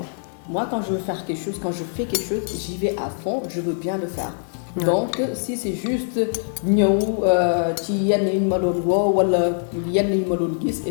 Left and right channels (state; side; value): silent; right; 63 dB below the other